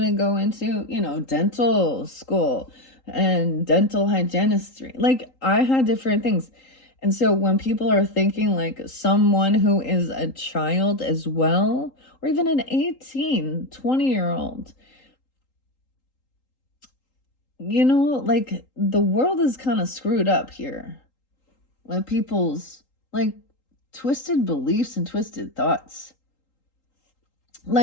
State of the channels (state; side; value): late; right; 3.8 ms